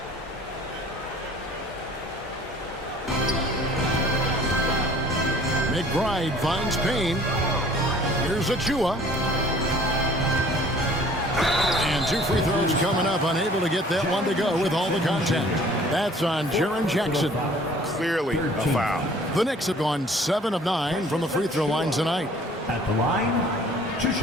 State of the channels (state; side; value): normal; both; correlation 0.52